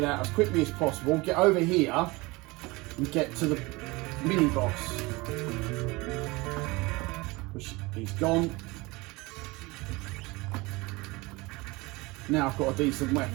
out as quickly as possible, get over here and get to the mini boss. Which he's gone. Now I've got a decent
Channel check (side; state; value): left; quieter; 23.4 dB